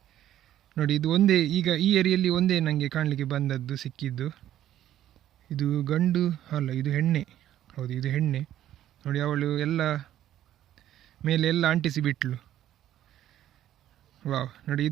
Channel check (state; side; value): quieter; left; 12.2 dB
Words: ನೋಡಿ. ಇದು ಒಂದೇ, ಈಗ ಈ ಏರಿಯಲ್ಲಿ ಒಂದೇ ನನಗೆ ಕಾಣಲಿಕ್ಕೆ ಬಂದದ್ದು ಸಿಕ್ಕಿದ್ದು. ಇದು ಗಂಡು ಅಲ್ಲ, ಇದು ಹೆಣ್ಣೆ. ಹೌದು, ಇದು ಹೆಣ್ಣೆ. ನೋಡಿ, ಅವಳು ಎಲ್ಲ ಮೇಲೆ ಎಲ್ಲ ಅಂಟಿಸಿ ಬಿಟ್ಲು. ವಾವ್, ನೋಡಿ,